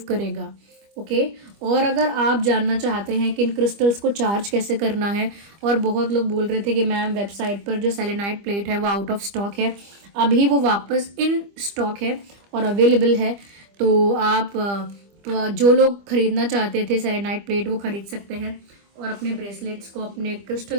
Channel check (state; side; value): late; left; 25 ms